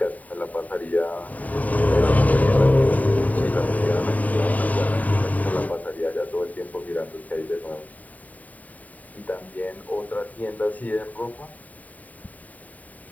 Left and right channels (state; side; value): late; right; 0.073 ms